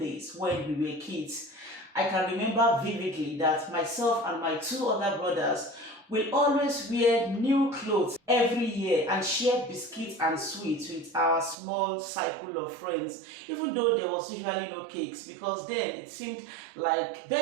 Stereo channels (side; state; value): left; drops out; at 11.6 s